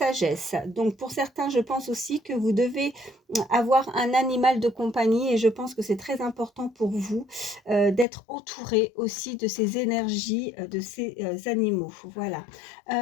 Donc pour certains, je pense aussi que vous devez avoir un animal de compagnie et je pense que c'est très important pour vous d'être entouré aussi de ces énergies de ces animaux. Voilà.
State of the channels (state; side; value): drops out; right; at 8.1 s